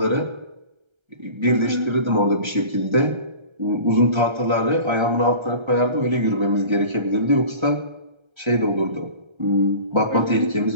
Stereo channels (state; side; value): late; left; 1.3 ms